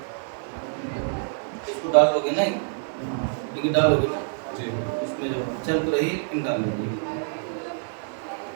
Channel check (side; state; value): left; silent; digital silence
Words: डालोगे नहीं, लेकिन डालोगे ना जी, उसमें जो चल तो रही लेकिन डाल लीजिए।